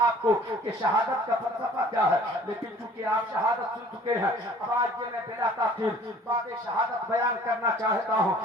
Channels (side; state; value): both; normal; correlation 0.51